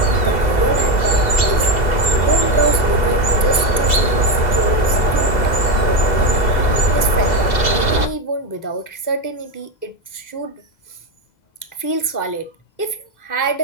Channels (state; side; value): late; right; 2.0 ms